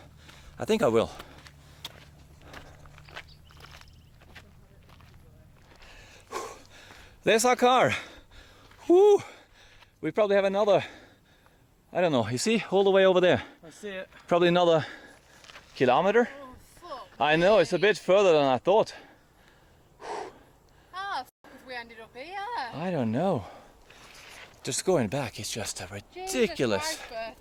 I think I will. There's our car. Woo! We probably have another, I don't know, you see, all the way over there. I see it. Probably another kilometer. I know, it's a bit further than I thought. Ah, if we ended up here. I don't know. Just going back is just ridiculous. Jesus Christ,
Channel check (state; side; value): identical; both; correlation 1.00